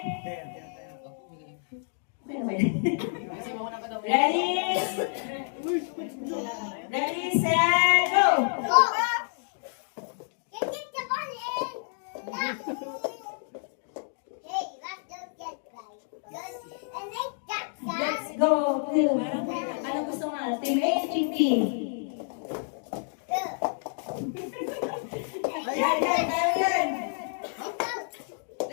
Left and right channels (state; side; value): silent; right; digital silence